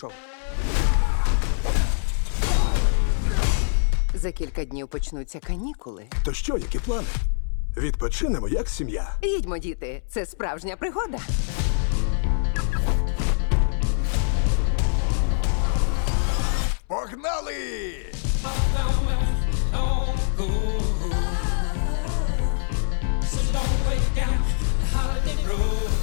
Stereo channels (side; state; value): right; silent; 62 dB below the other